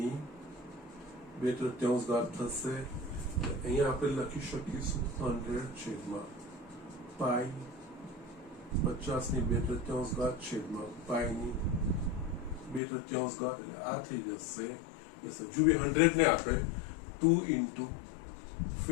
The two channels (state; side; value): drops out; right; at 12.8 s